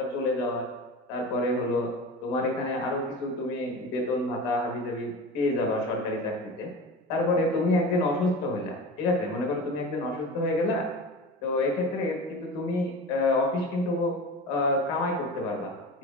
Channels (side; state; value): both; normal; correlation 0.32